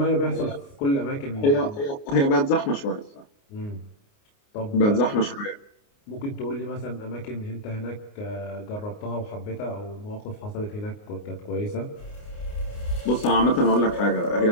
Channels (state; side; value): late; right; 29 ms